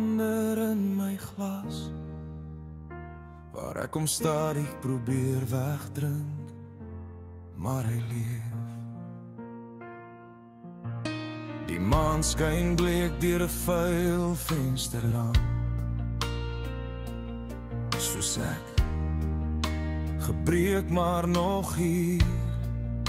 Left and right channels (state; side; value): identical; both; correlation 1.00